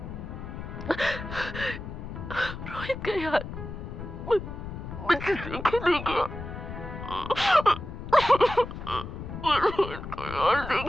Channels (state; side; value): noise; left; rumble, 9 dB below the sound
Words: रोहित का यार मुझे देखे नहीं गया। रोहित का यार